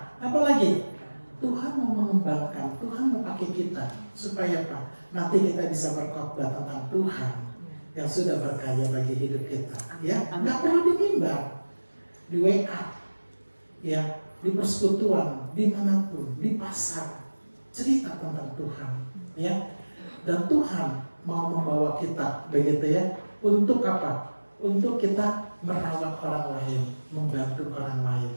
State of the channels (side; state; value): both; inverted; correlation -1.00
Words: apalagi Tuhan mau mengembangkan, Tuhan mau pakai kita supaya apa? Nanti kita bisa berkhotbah tentang Tuhan yang sudah berkarya bagi hidup kita. Ya, nggak perlu di mimbar, di WA, ya, di persekutuan, dimanapun, di pasar, cerita tentang Tuhan, ya. Dan Tuhan mau membawa kita, begitu ya, untuk apa? Untuk kita merawat orang lain, membantu orang lain,